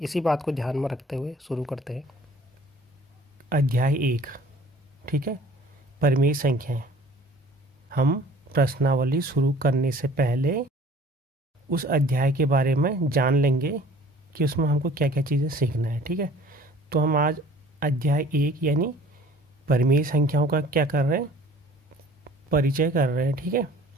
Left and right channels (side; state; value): both; normal; correlation 0.50